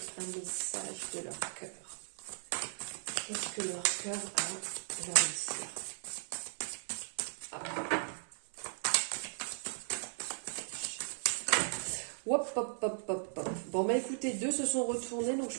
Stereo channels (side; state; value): left; silent; 53 dB below the other